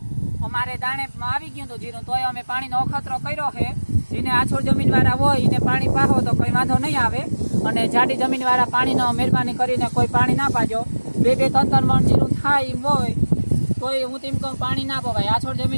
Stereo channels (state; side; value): inverted; both; correlation -1.00